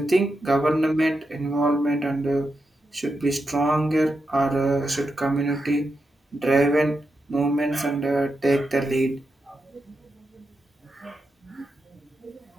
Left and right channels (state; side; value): normal; both; correlation 0.87